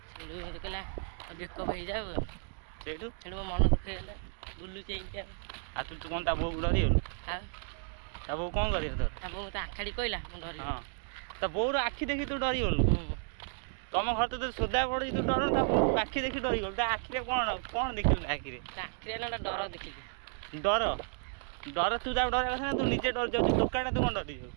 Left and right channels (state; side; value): silent; left; 56 dB below the other